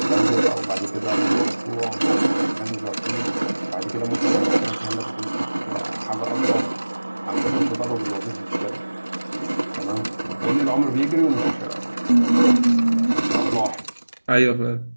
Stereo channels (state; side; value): inverted; both; correlation -1.00